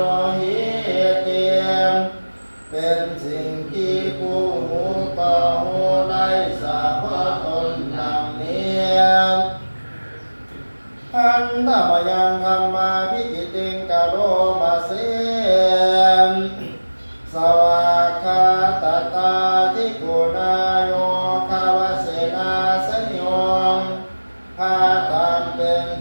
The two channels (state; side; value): inverted; both; correlation -1.00